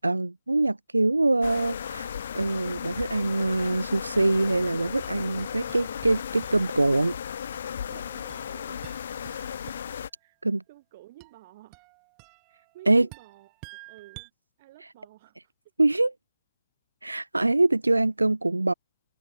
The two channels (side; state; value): both; inverted; correlation -0.97